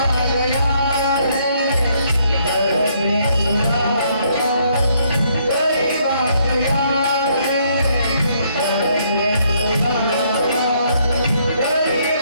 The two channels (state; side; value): inverted; both; correlation -0.70